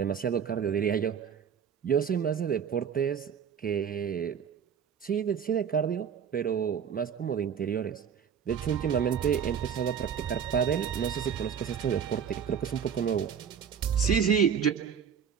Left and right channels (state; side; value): quieter; left; 7.7 dB